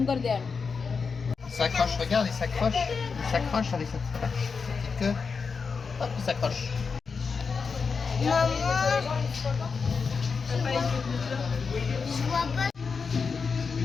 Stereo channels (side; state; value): right; quieter; 5.2 dB